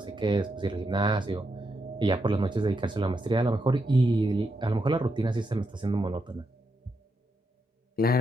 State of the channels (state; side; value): normal; both; correlation 0.83